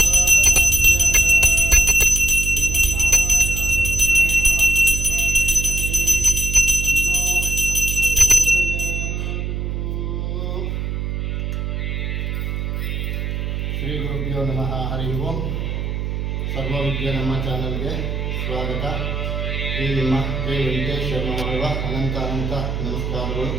ಶ್ರೀ ಗುರುಭ್ಯೋ ನಮಃ. ಹರಿ ಓಂ. ಸರ್ವವಿದ್ಯೆ ನಮ್ಮ ಚಾನಲ್ಗೆ ಸ್ವಾಗತ. ಈ ನಿಮ್ಮ ಕೆ ವೆಂಕಟೇಶ್ ಶರ್ಮ ಮಾಡುವ ಅನಂತ ನಮಸ್ಕಾರಗಳು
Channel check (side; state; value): right; noise; hum, 3 dB below the sound